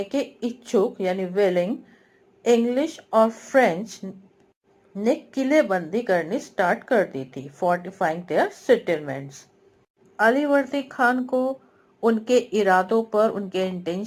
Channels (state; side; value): identical; both; correlation 1.00